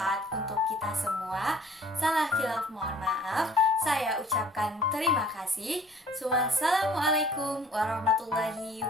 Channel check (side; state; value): both; normal; correlation 0.53